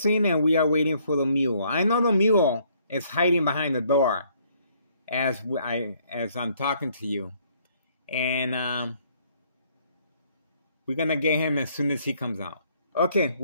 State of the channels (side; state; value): both; inverted; correlation -0.65